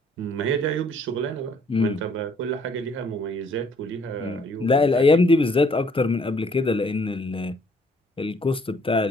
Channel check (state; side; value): normal; both; correlation 0.63